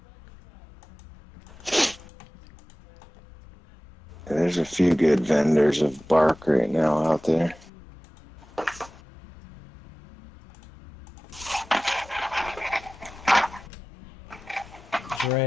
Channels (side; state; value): both; normal; correlation 0.96